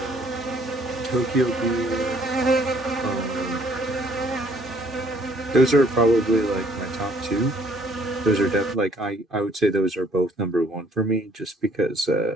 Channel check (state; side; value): normal; both; correlation 0.62